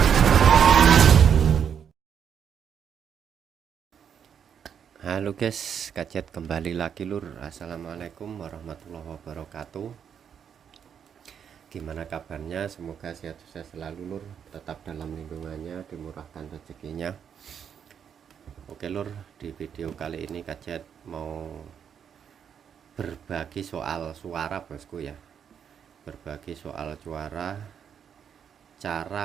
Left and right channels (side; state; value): left; quieter; 7.9 dB